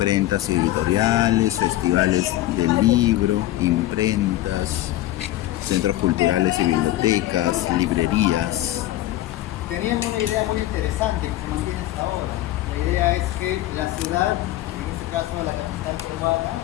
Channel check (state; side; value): quieter; right; 15.2 dB